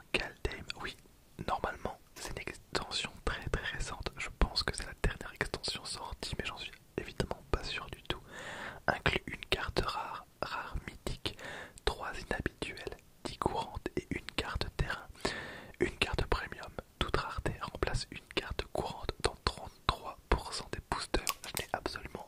Kaldheim. Oui, normalement, c'est une extension très récente. Je pense que c'est la dernière extension sortie, mais j'en suis évidemment pas sûr du tout. Inclut une carte rare mythique, 3 inhabituelles, 10 courantes et une carte terrain. Une carte premium, toute rareté, remplace une carte courante dans 33% des boosters. Je n'ai absolument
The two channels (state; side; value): identical; both; correlation 1.00